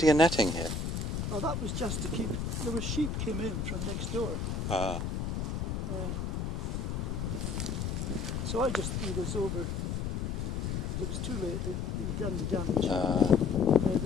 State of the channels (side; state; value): left; noise; rumble, 1 dB below the sound